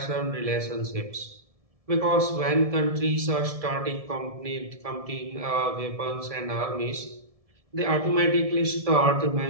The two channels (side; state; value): left; late; 1.7 ms